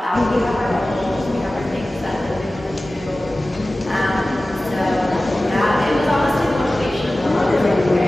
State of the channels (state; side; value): normal; both; correlation 0.96